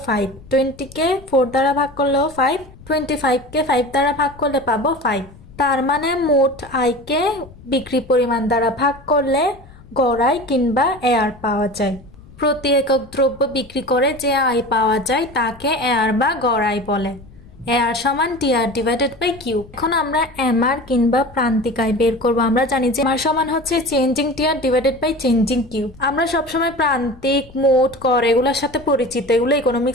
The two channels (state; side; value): noise; left; rumble, 22 dB below the sound